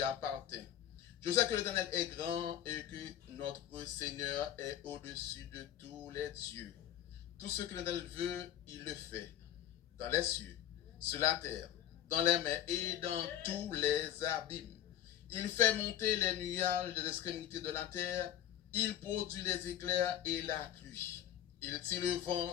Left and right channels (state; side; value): quieter; right; 11.2 dB